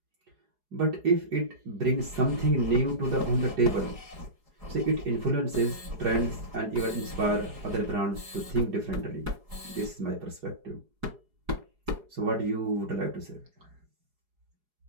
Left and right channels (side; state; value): left; late; 4.8 ms